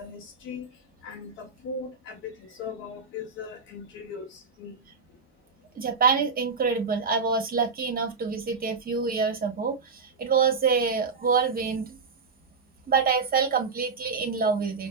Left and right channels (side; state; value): left; quieter; 4.9 dB